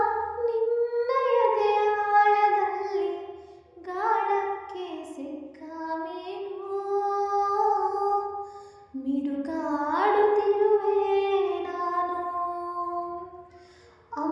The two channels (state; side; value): identical; both; correlation 1.00